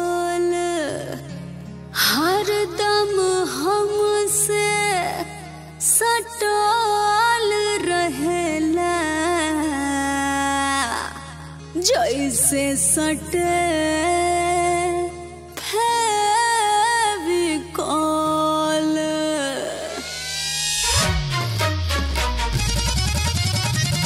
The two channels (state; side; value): identical; both; correlation 1.00